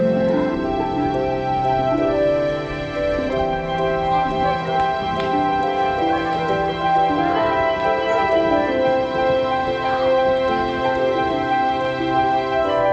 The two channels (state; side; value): identical; both; correlation 1.00